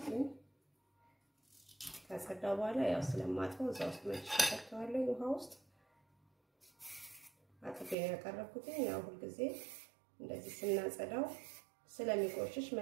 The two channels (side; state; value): left; drops out; at 8.0 s